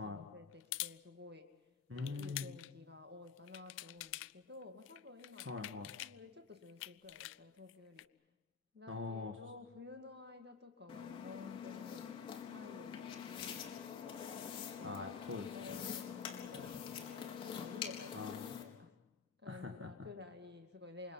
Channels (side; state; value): right; quieter; 5.9 dB